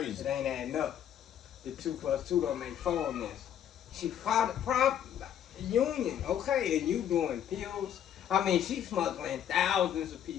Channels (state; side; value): quieter; right; 9.8 dB